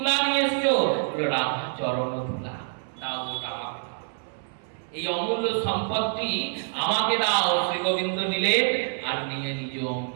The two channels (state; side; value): silent; left; 61 dB below the other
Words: নিয়ে এসছো? বললো রাধা চরণ ধুলা। দাও ওটা আমাকে দাও, এই অমূল্য সম্পদটি আমাকে দাও। শ্রী গোবিন্দ নিলেন আর নিয়ে নিজ